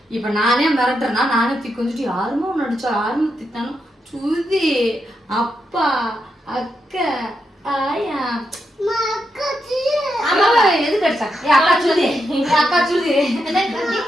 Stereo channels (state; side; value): normal; both; correlation 0.84